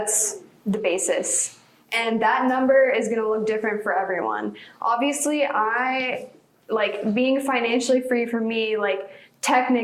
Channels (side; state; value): both; identical; correlation 1.00